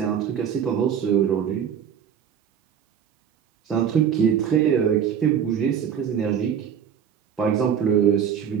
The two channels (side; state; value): left; quieter; 8.3 dB